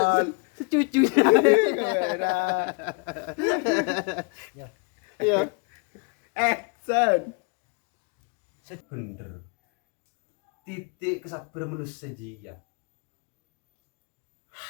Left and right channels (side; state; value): right; quieter; 32.5 dB